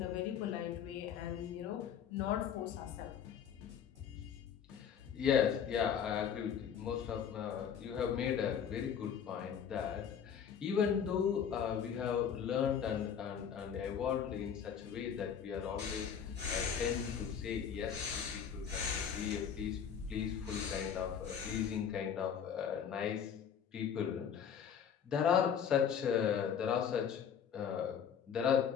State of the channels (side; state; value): right; quieter; 8.0 dB